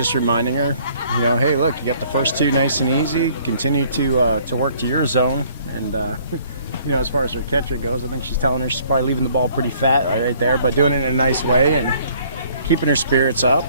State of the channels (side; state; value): both; inverted; correlation -0.59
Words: reminding her, you know, hey, look, you got the first 2 nice and easy. Continue to work to your zone, and you know, as far as her catcher goes, I think she's telling her she's probably leaving the ball pretty fat right there, but doing it in a nice way and keeping her spirits up,